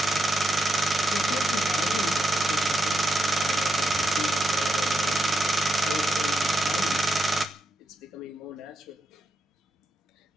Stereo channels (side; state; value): both; normal; correlation 0.83